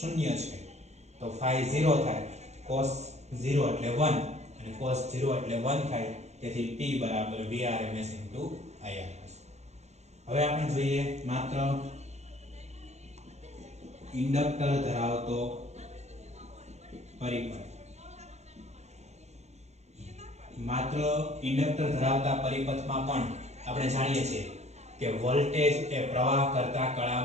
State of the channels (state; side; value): late; left; 0.32 ms